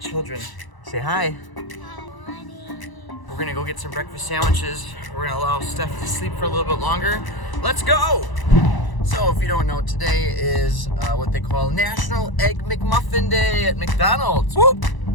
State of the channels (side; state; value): right; late; 1.0 ms